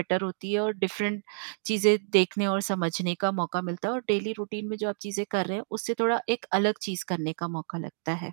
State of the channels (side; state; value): left; silent; digital silence